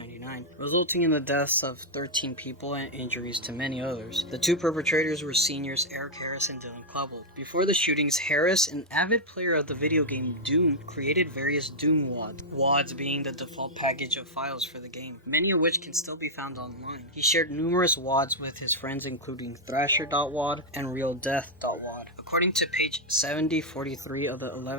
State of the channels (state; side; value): normal; both; correlation -0.04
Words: resulting in the deaths of 13 people and injuries to many others. The 2 perpetrators were seniors Eric Harris and Dylan Klebold. Before the shootings, Harris, an avid player of the video game Doom, created various Doom WADs, WADs being the default package of files for the game, many of which can still be found online. He shared numerous WADs with his friends, including Thrasher.wad and RealDeath.wad. According to page 7043 of the